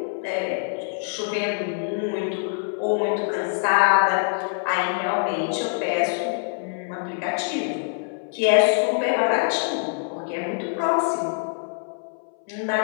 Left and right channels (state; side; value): silent; right; 62 dB below the other